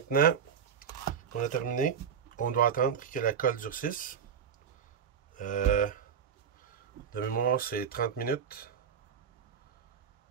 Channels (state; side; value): quieter; left; 7.5 dB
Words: qu'on a terminé, on doit attendre que la colle durcisse. De mémoire, c'est 30 minutes.